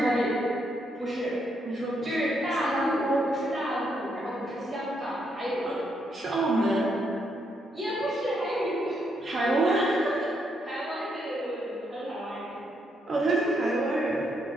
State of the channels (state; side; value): normal; both; correlation 0.77